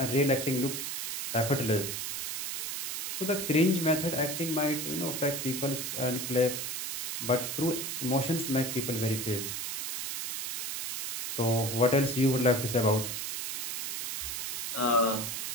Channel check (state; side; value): noise; right; hiss, 3 dB below the sound